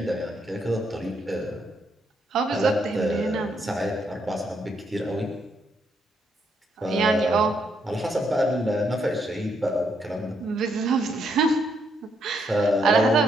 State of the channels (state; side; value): normal; both; correlation 0.76